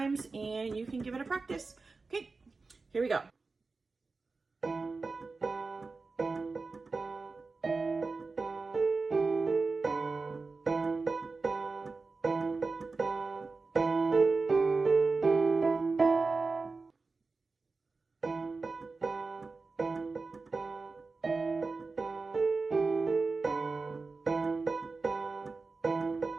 and you can give it a practice. Okay, here we go.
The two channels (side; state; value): left; quieter; 4.0 dB